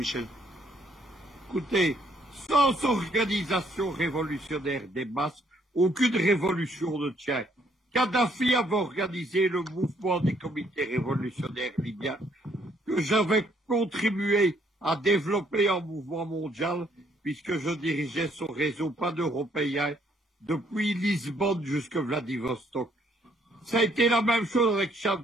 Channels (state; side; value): normal; both; correlation 0.68